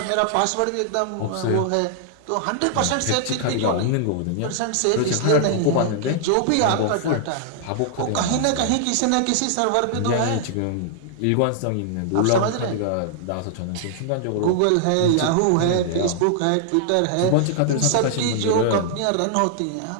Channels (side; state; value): both; different; correlation -0.01